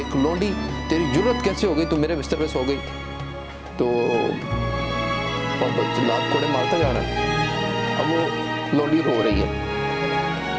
लौंडी, तेरी जुर्रत कैसे हो गई, तू मेरे बिस्तर पे सो गई? तो जल्लाद कोड़े मारता जा रहा है। अब वो लौंडी रो रही है,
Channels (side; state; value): both; identical; correlation 1.00